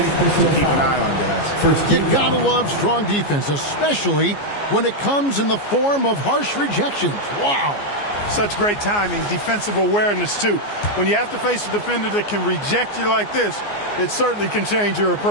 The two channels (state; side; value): late; right; 14 ms